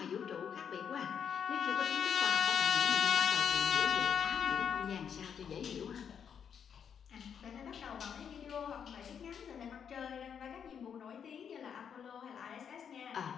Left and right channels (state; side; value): quieter; right; 7.7 dB